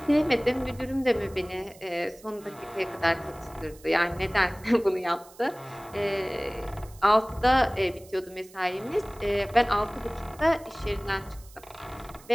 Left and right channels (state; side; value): noise; right; hiss, 23 dB below the sound